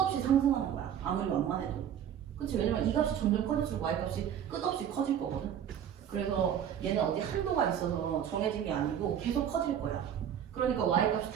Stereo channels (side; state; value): left; quieter; 9.3 dB